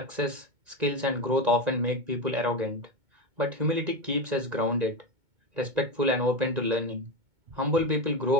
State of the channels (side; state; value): left; late; 2.2 ms